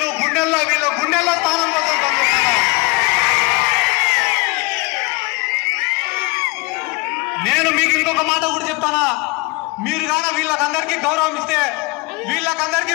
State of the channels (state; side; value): quieter; right; 25.3 dB